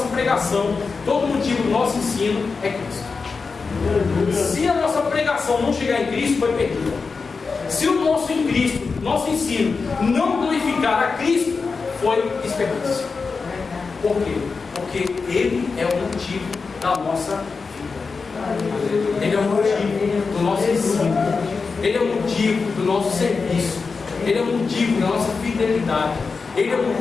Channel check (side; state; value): right; quieter; 4.7 dB